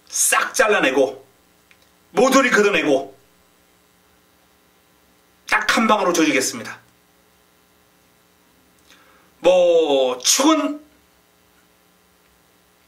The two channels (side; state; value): both; identical; correlation 1.00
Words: 싹 잘라내고 모조리 걷어내고 딱 한방으로 조지겠습니다. 뭐 축은